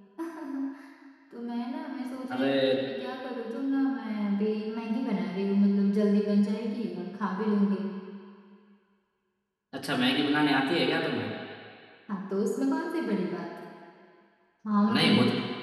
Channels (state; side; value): identical; both; correlation 1.00